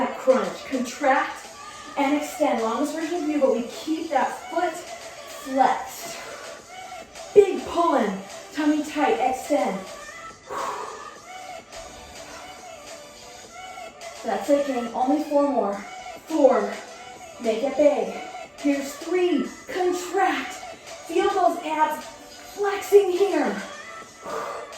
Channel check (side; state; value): both; identical; correlation 1.00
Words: crunch. Contract and extend. Longest version of you, but we keep that foot flexed. Big pulling. Tummy tight. Extend. That's it, gang. Only 4 more. 4. Make it big. Here's 3. Contract. Feel those abs flexing here.